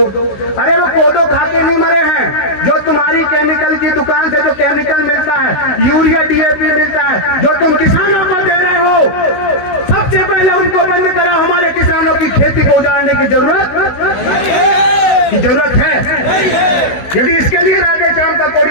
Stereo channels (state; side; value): late; right; 16 ms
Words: अरे वो कोदो खा के नहीं मरे हैं, जो तुम्हारी केमिकल की दुकान से जो केमिकल मिलता है, यूरिया डीएपी मिलता है, जो तुम किसानों को दे रहे हो, सबसे पहले उनको बंद कराओ। हमारे किसानों की खेती को उजाड़ने की जरूरत है। यदि इसके लिए राधे श्याम का